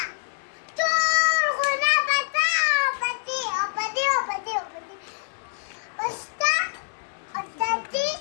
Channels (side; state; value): right; silent; digital silence